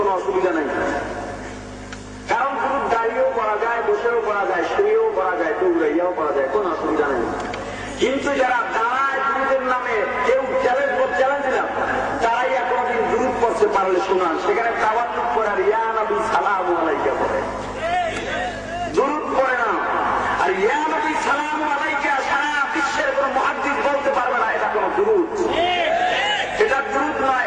অসুবিধা নেই, কারণ দুরূদ দাঁড়িয়েও পড়া যায়, বসেও পড়া যায়, শুয়েও পড়া যায়, দৌড়াইয়াও পড়া যায়, কোনো অসুবিধা নেই। কিন্তু যারা দাঁড়ায় দুরূদের নামে কেউ চ্যালেঞ্জ দিলাম, দাঁড়াইয়া কোনোদিন দুরূদ পড়তে পারলে শোনান, সেখানে তাওয়াক্কুল করার ইয়া নবী সালামু আলাইকা পড়ে, দুরূদ পড়ে না। আর ইয়া নবী সালামু আলাইকা সারা বিশ্বের কোন মুহাদ্দিস বলতে পারবে না এটা কোন দুরূদ, এটা দুরূদ নয়,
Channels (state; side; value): identical; both; correlation 1.00